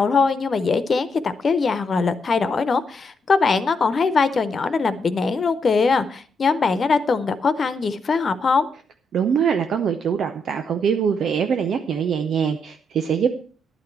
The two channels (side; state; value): both; normal; correlation 0.78